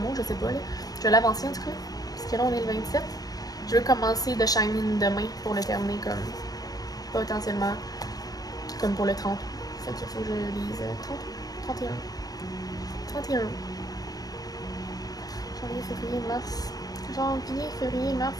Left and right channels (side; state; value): right; late; 0.18 ms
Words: je sais pas. Là. Je vais l'avancer en tout cas. Parce que là, on est le 27. Je veux commencer The Shining demain pour le terminer comme potentiellement comme pour le 30. Fait qu'il faut que je lise 31. Janvier, février, mars,